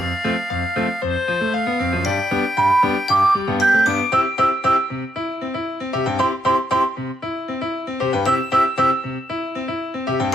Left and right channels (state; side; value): normal; both; correlation 0.79